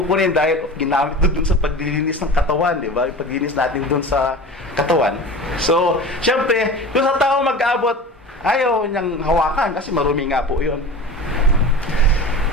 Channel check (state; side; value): normal; both; correlation 0.34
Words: dahil ginamit doon sa paglilinis ng katawan, di ba? Yung paglilinis natin doon sa katawan. So, syempre, yung sa tao mag-abot, ayaw niyang hawakan kasi marumi nga po yun.